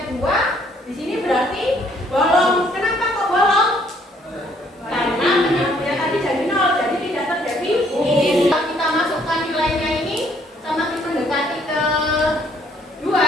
2? Di sini berarti bolong. Kenapa kok bolong? Karena penyebutnya tadi jadi 0, jadi tidak terdefinisi. Kalau kita masukkan nilainya ini semakin mendekati ke 2,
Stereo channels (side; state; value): both; normal; correlation 0.65